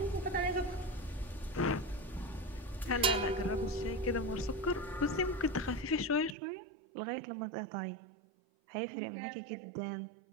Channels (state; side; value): drops out; left; at 6.4 s